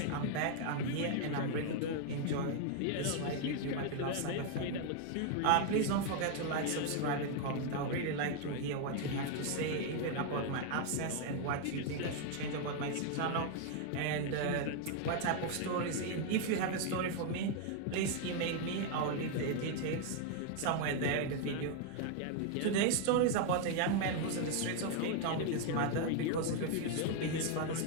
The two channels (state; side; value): different; both; correlation 0.00